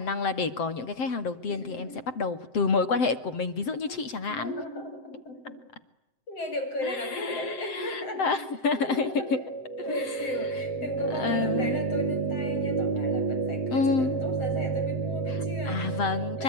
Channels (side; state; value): right; late; 7.7 ms